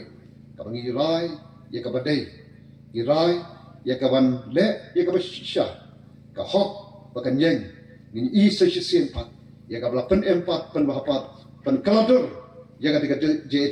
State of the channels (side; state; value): both; identical; correlation 1.00